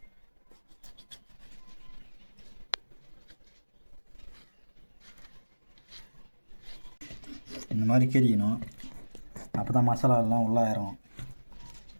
இந்த மாதிரி கீறிக்கணும், அப்போ தான் மசாலா எல்லாம் உள்ளே இறங்கும்.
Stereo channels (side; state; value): both; inverted; correlation -1.00